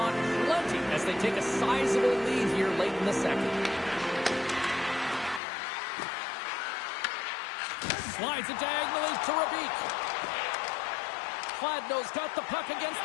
plenty as they take a sizable lead here late in the second. Slides it diagonally to Rabik. Gladno's got the puck against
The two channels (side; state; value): right; drops out; at 5.4 s